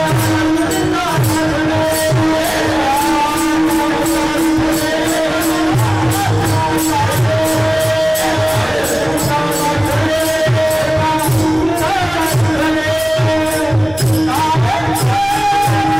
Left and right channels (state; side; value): noise; right; hum, 19 dB below the sound